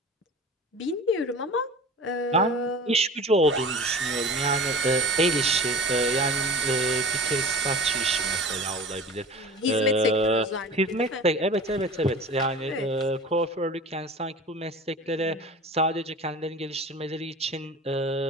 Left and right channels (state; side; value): normal; both; correlation 0.38